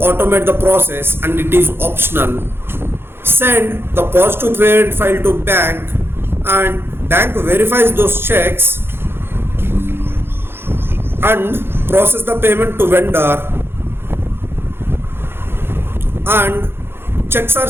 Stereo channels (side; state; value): left; late; 0.11 ms